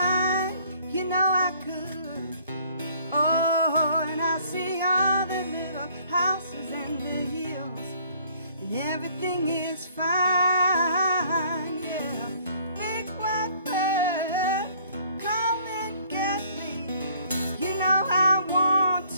you know I could. Oh, and I see all the little houses and the hills, and everything is fine, yeah. Big white bird, come and get me. You know I want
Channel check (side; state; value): both; inverted; correlation -0.59